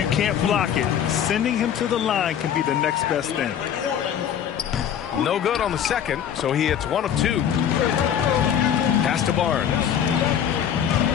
can't block it, sending him to the line can be the next best thing. No good on the second, so he hits one of two. Pass to Barnes.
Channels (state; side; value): quieter; right; 9.1 dB